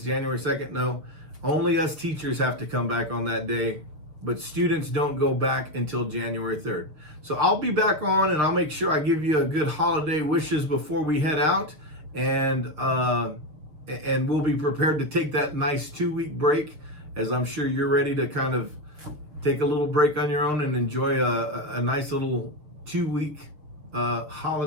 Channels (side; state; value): left; late; 6.9 ms